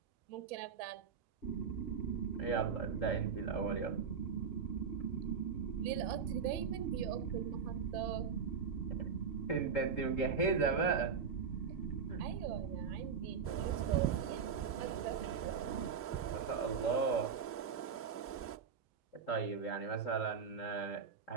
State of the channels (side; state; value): left; quieter; 6.2 dB